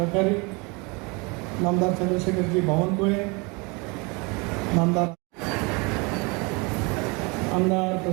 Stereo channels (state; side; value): quieter; left; 28.8 dB